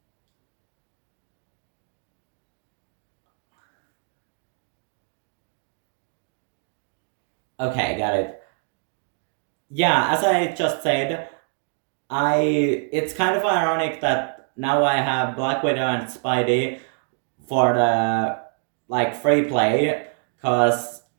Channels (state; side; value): silent; left; 57 dB below the other